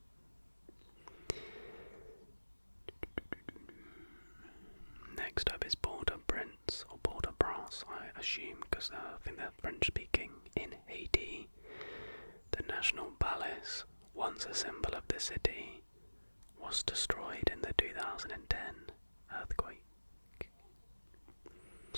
Next up is Port-au-Prince, or Port-au-Prince, I assume, because I think they're French speaking, in Haiti. The National Palace, once a symbol of the city, was destroyed in the 2010 earthquake.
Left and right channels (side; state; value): both; inverted; correlation -1.00